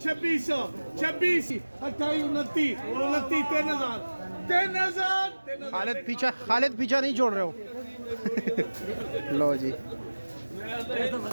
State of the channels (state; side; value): inverted; both; correlation -1.00